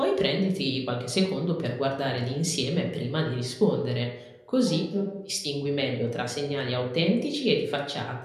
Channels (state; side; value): identical; both; correlation 1.00